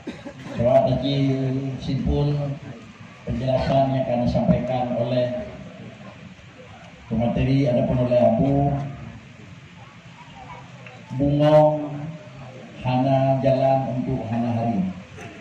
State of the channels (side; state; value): both; identical; correlation 1.00